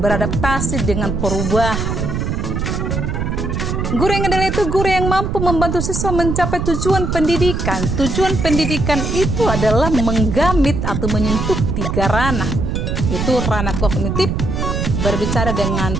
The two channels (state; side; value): noise; right; rumble, 1 dB below the sound